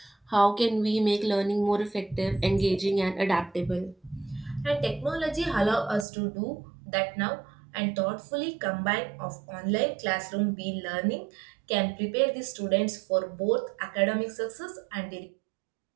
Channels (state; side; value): drops out; left; at 6.1 s